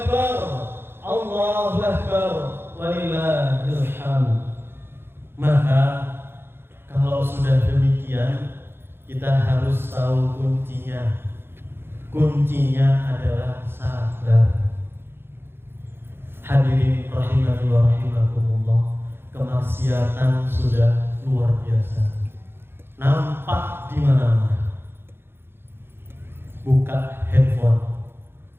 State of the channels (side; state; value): left; late; 0.11 ms